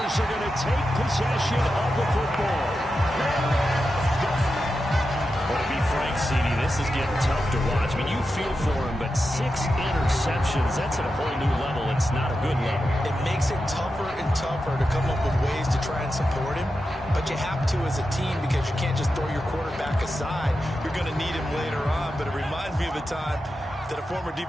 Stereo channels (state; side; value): normal; both; correlation 0.90